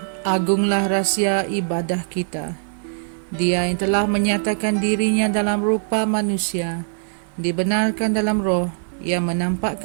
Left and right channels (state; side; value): silent; left; digital silence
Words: agunglah rahsia ibadah kita. Dia yang telah menyatakan dirinya dalam rupa manusia, dibenarkan dalam roh, yang